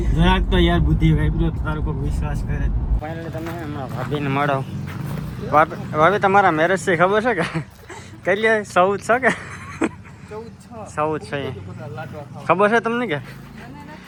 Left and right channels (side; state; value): both; identical; correlation 1.00